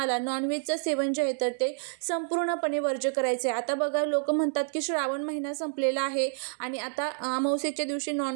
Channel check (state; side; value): silent; left; 59 dB below the other